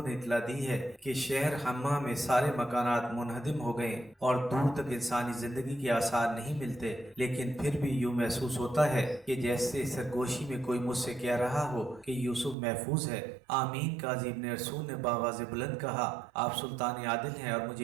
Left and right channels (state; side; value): drops out; left; at 12.6 s